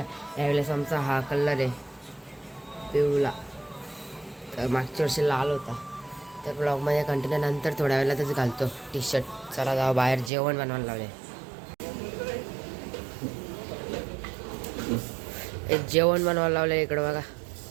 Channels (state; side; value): drops out; left; at 10.3 s